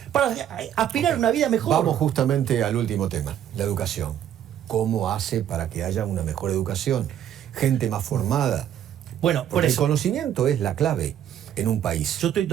para aspirar a una vida mejor. Vamos justamente al último tema, la educación. ¿Cómo hace para que haya una mejor educación? Gente más formada. Bueno, por Porque el eso. conocimiento es la clave en un país. Yo estoy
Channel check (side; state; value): left; quieter; 10.3 dB